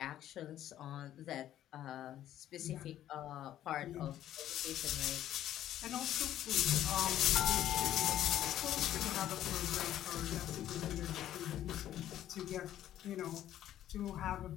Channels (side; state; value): right; quieter; 12.1 dB